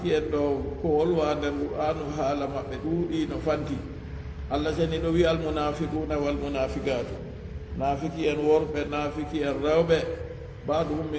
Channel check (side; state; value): both; identical; correlation 1.00